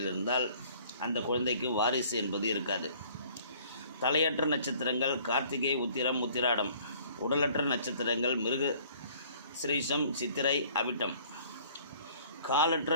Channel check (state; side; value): inverted; both; correlation -0.55